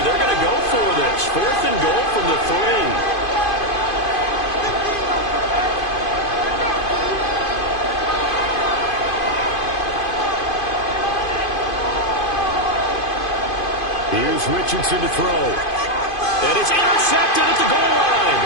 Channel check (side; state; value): right; late; 2.5 ms